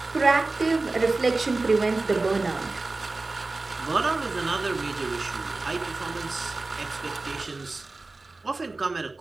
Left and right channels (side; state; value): left; quieter; 3.4 dB